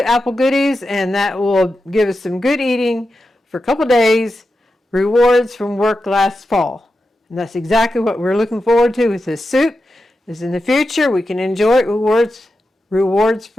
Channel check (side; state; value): both; normal; correlation 0.90